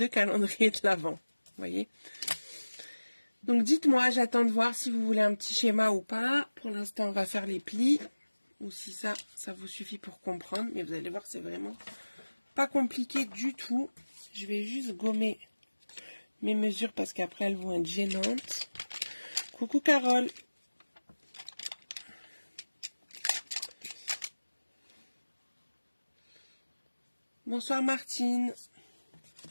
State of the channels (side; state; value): both; inverted; correlation -1.00